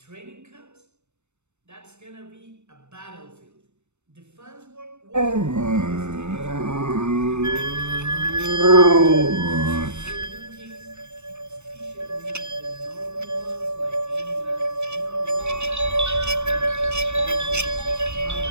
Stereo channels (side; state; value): left; late; 0.82 ms